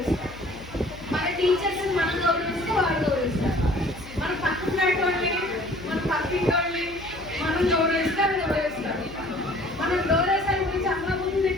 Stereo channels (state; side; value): noise; left; hum, 18 dB below the sound